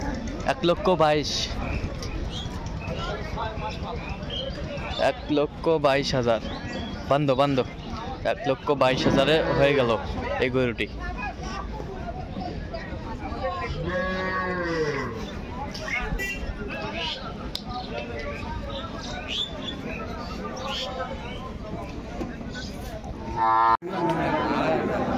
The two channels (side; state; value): both; identical; correlation 1.00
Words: 1,22,000। 1,22,000 বন্ধ বন্ধ। 1,22,000 হয়ে গেল এই গরুটি।